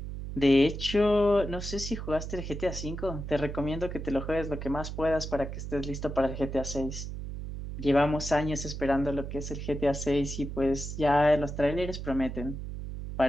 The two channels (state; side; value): noise; right; hum, 7 dB below the sound